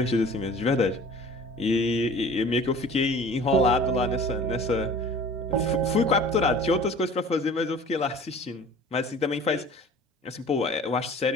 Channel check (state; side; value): normal; both; correlation 0.45